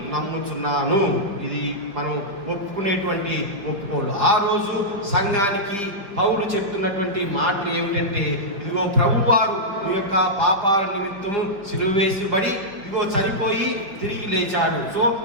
నమ్ముచున్నాను. ఇది మనం ఒప్పుకునేటువంటి ఒప్పుకోడు. ఆ రోజు సంఘానికి పౌలు చెప్తున్నటువంటి మాటలు ఏమిటంటే ఇదిగో ప్రభువారు మీ యొక్క పాపాల నిమిత్తము సిలువ వేసిబడి ఇదిగో చనిపోయి తిరిగి లేచాడు. సో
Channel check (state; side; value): late; left; 5.0 ms